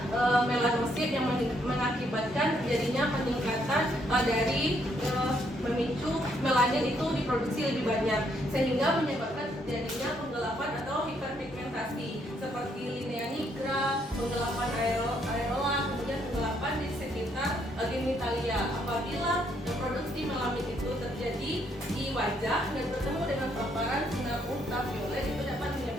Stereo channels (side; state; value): both; normal; correlation 0.72